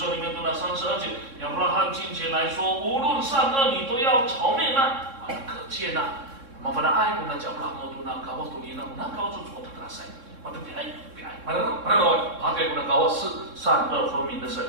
ni tuna san saja. Yang Abraham 金钱来说，无论善恶你都要朝面啊，可见呐。Mafana ai kuna cha Abraham tuna kawas tuninan na kau tu cukup terasa. 我的他给我们高是善恶分明的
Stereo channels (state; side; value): late; left; 3.6 ms